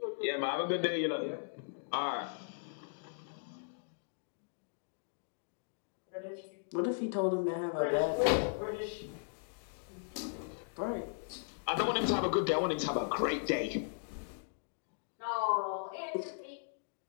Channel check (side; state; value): right; silent; digital silence